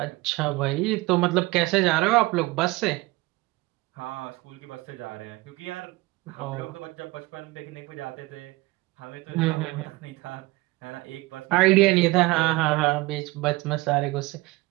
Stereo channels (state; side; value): quieter; left; 21.5 dB